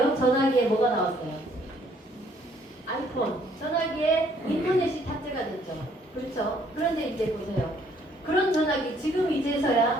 전화기에 뭐가 나왔어요? 아이폰. 전화기에 인터넷이 탑재가 됐죠. 그렇죠? 그런데 이제 보세요. 그런 전화기 지금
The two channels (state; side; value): normal; both; correlation 0.64